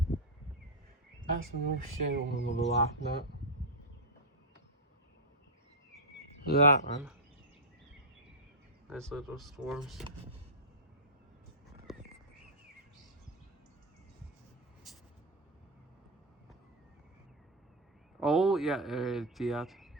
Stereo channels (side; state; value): both; normal; correlation -0.01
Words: That's no shit I'm gonna be laughing at. Look at that, man. Nice little storms. Oh, yeah, Jihad.